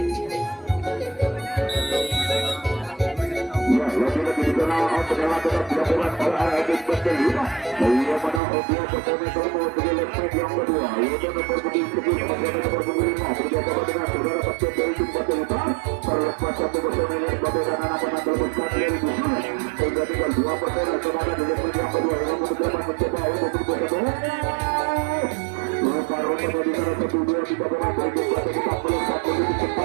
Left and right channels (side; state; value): left; drops out; at 8.4 s